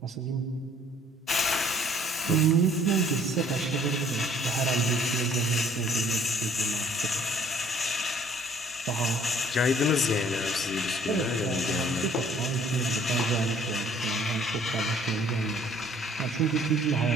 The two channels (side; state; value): both; normal; correlation 0.58